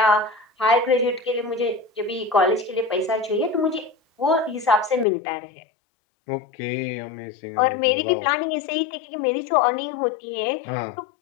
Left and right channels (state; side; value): drops out; right; at 5.1 s